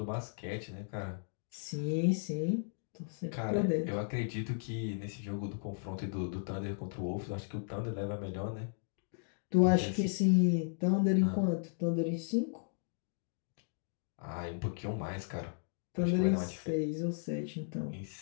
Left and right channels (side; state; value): right; silent; digital silence